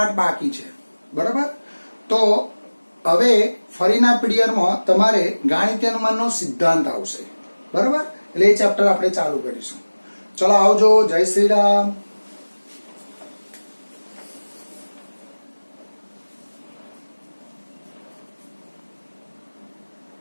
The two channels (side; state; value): both; inverted; correlation -1.00